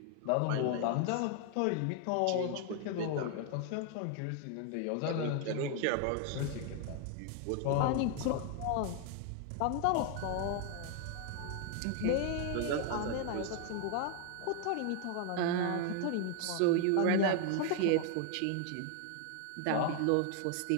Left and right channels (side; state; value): both; different; correlation 0.00